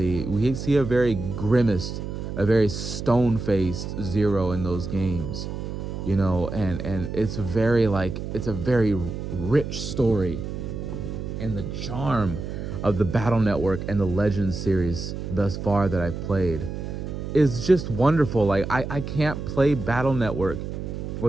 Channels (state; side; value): noise; right; hum, 6 dB below the sound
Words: we see a very grimaced, a very stone-faced Zero in those games, you know, and it's a very rich story. And the charm of the Battle Network and the Legends series thus far that I've played is just wonderful. Like, I can't play Battle Network